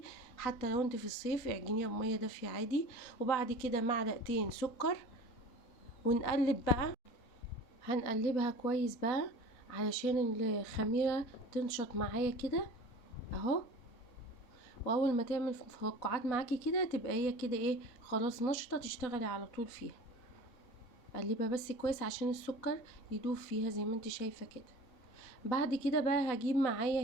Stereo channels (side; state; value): right; late; 4.0 ms